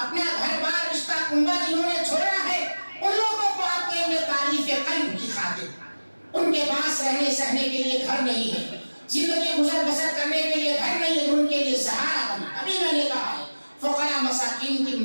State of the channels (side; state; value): both; inverted; correlation -1.00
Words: گھر بار رشتہ کنبہ جنہوں نے چھوڑا ہے، ان لوگوں کو آپ دیں گے تعریف قلب کی خاطر۔ ان کے پاس رہنے سہنے کے لیے گھر نہیں ہے، زندگی گزر بسر کرنے کے لیے گھر نہیں ہے، ان کے لیے سہارا بنا۔ ابھی میں نے کہا ہے فقراء مساکین کی